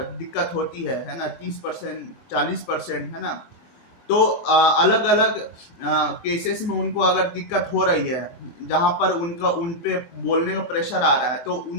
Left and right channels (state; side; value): late; right; 24 ms